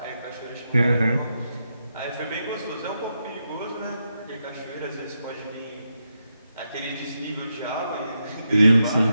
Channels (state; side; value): inverted; both; correlation -0.85